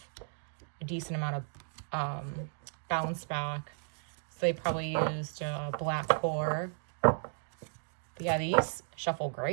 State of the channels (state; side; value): silent; left; digital silence